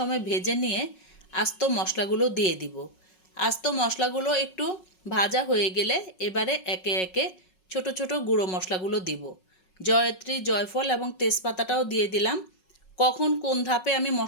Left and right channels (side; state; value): right; late; 5.4 ms